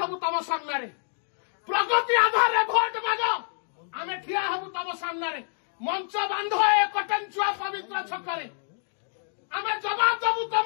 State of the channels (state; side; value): silent; right; digital silence